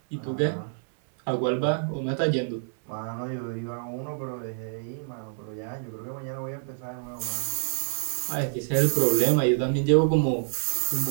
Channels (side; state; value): left; silent; 60 dB below the other